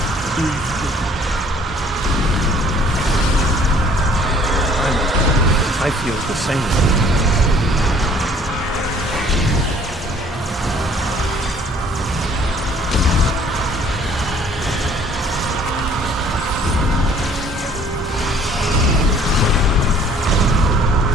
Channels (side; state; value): both; normal; correlation 0.56